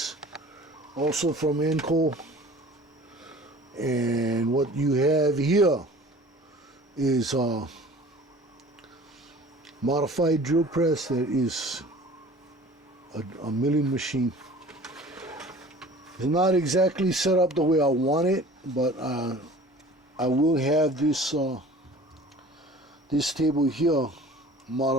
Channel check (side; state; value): both; normal; correlation 0.45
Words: also from Enco. And what you have here is a modified drill press that is a milling machine. It's not exactly set up the way I want it, but I will have this this table here